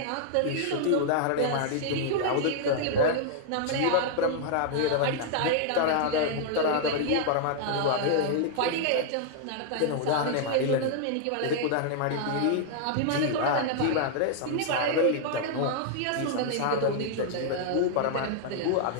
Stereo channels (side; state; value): both; different; correlation -0.01